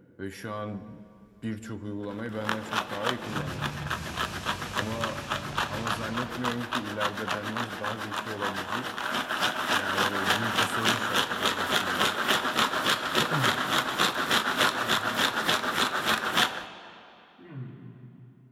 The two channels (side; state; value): both; identical; correlation 1.00